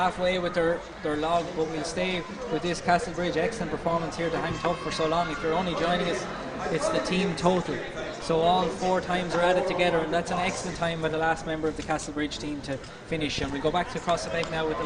with their log, but we'll stay with this Castlebridge. Excellent performance here to hang tough for so long. If you're only joining us, it's the team total. So all 4 times are added together, and that's an excellent time by the last member of the Castlebridge team to finish. And we'll go back to Across the Beg now with the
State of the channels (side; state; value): both; identical; correlation 1.00